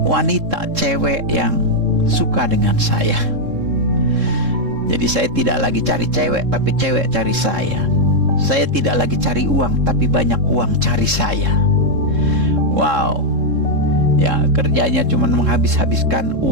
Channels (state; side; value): late; left; 3.7 ms